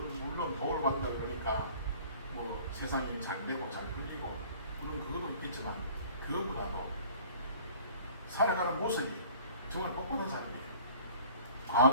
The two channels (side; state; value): both; inverted; correlation -0.49